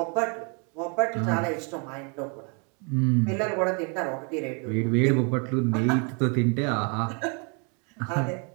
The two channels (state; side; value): quieter; left; 35.7 dB